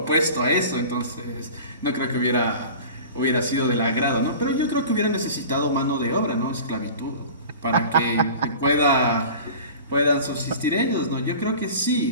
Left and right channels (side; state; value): both; inverted; correlation -0.38